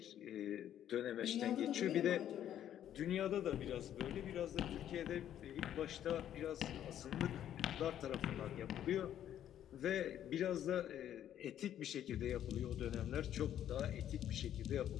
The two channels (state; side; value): quieter; right; 10.8 dB